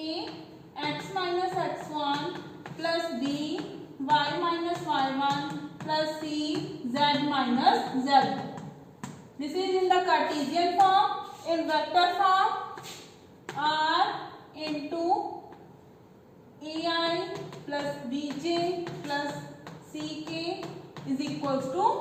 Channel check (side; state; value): both; identical; correlation 1.00